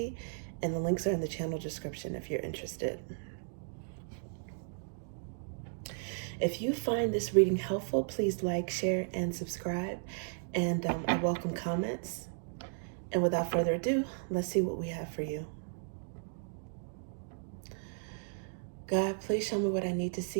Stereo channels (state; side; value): silent; left; digital silence